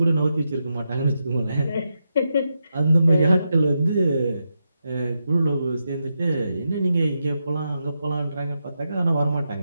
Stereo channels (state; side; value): inverted; both; correlation -0.86